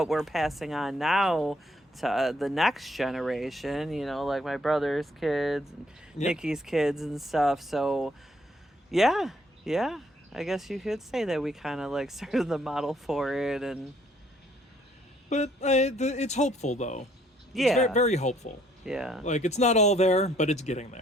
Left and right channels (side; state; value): both; normal; correlation 0.66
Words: we're passing on now to the next generation, you know, like my brother's kids and Nikki's kids and stuff. So yeah, I guess you could say that we kind of like started the model for it. And But it's hopeful, though. yeah, It's very, very hopeful. yeah, Like, it's not all there, but it's getting